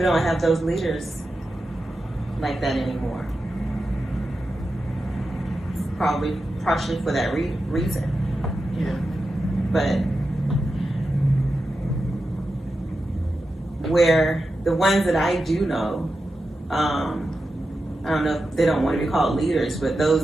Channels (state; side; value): normal; both; correlation 0.90